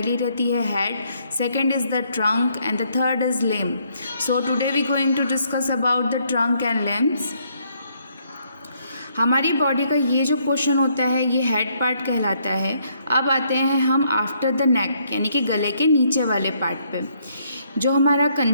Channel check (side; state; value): both; inverted; correlation -0.70